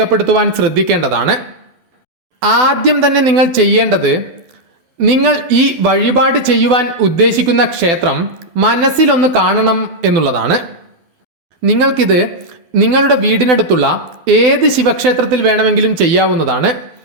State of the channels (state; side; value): late; left; 12 ms